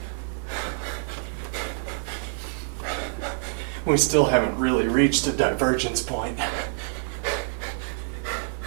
We still haven't really reached a divergence point.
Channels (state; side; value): silent; left; 61 dB below the other